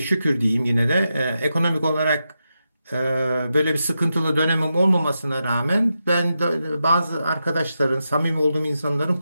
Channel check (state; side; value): inverted; both; correlation -0.87